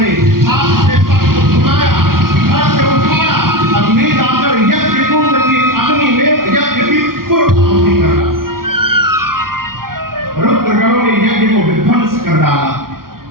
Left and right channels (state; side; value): late; left; 0.92 ms